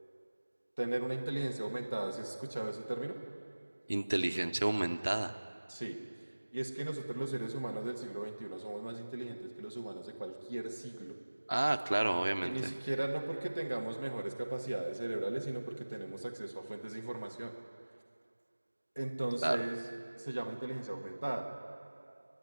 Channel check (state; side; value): inverted; both; correlation -1.00